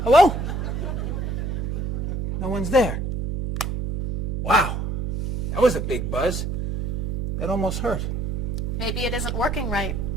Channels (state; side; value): noise; right; hum, 1 dB below the sound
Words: Hello? No one's there. Wow. That was a big buzz. That almost hurt. Maybe it isn't working right.